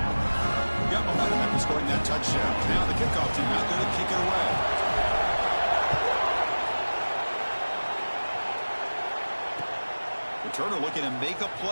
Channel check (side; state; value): both; inverted; correlation -1.00